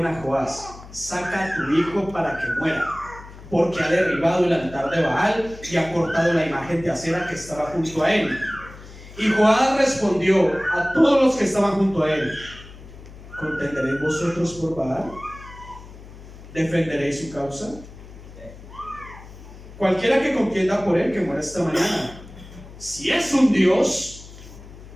a Joás, saca a tu hijo para que muera, porque ha derribado el altar de Baal y ha cortado la imagen de acera que estaba junto a él. Y Joás respondió a todos los que estaban junto a él, ¿contenderéis vosotros por Baal? ¿Defenderéis su causa? Cualquiera que contienda por él, que muera esta mañana. Si es un Dios,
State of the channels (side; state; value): left; noise; hum, 17 dB below the sound